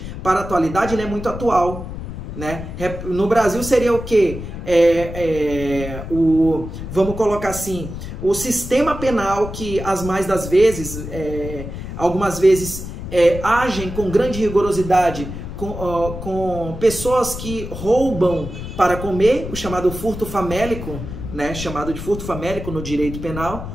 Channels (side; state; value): left; noise; rumble, 9 dB below the sound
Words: para a atualidade, ele é muito atual. Né? No Brasil seria o quê? Vamos colocar assim, o sistema penal que algumas vezes agem com grande rigorosidade com pessoas que roubam para comer, o chamado furto famélico, né? Chamado de furto famélico no direito penal,